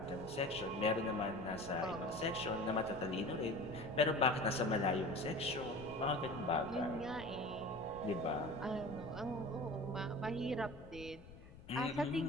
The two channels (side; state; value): left; noise; rumble, 17 dB below the sound